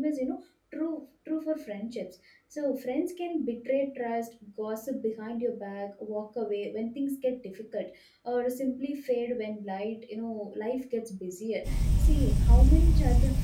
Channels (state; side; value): identical; both; correlation 1.00